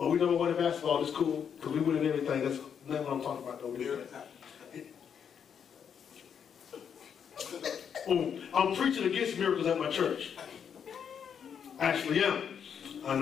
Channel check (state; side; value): quieter; right; 7.7 dB